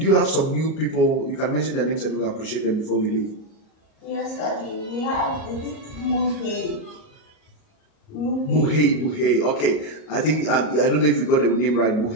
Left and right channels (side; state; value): right; late; 38 ms